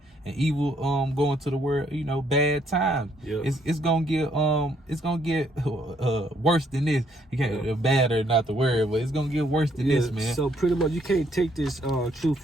and evil going to the world. You know, bad times. It's gonna get worse than this. You can't bad or not the word, but it's gonna get worse than this, man. So pretty much, you can't take this truth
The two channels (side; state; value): both; normal; correlation 0.69